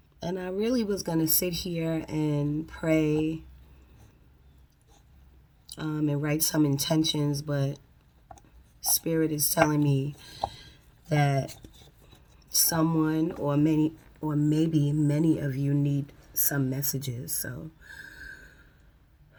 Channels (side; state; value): both; identical; correlation 1.00